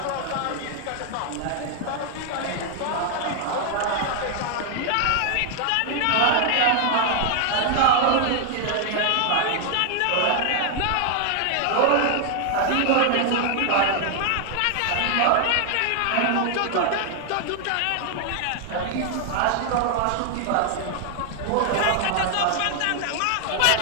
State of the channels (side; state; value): both; different; correlation 0.00